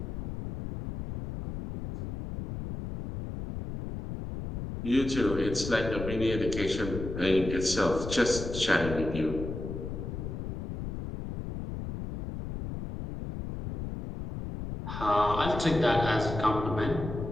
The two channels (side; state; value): left; noise; rumble, 7 dB below the sound